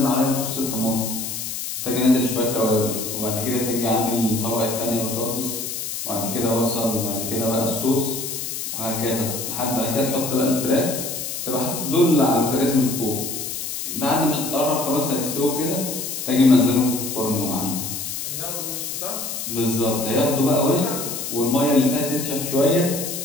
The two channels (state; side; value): noise; left; hiss, 5 dB below the sound